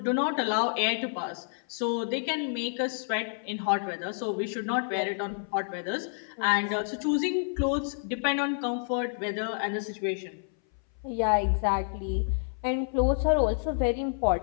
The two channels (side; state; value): right; silent; 59 dB below the other